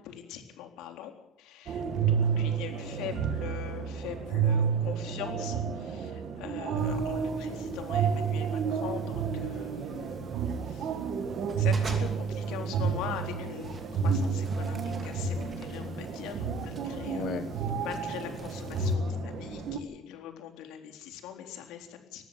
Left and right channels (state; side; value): quieter; left; 4.2 dB